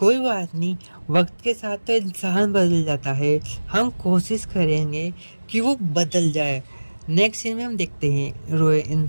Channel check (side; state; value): both; inverted; correlation -1.00